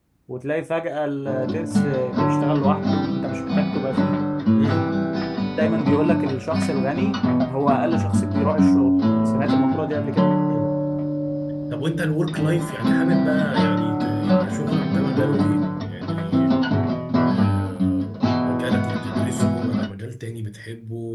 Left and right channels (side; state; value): both; identical; correlation 1.00